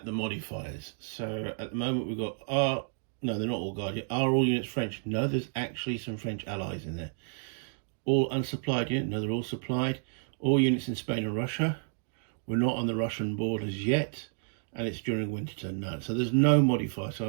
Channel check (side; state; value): left; silent; 57 dB below the other